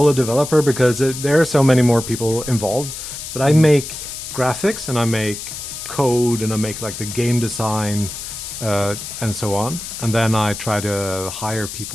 developer because there are so many more people involved. But I make graphics, and I make code, and I make like the game design, and so on. And then I try to hire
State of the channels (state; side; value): noise; left; hiss, 9 dB below the sound